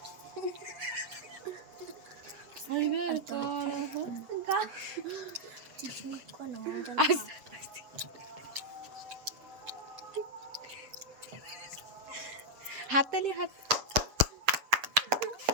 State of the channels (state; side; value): late; left; 7.7 ms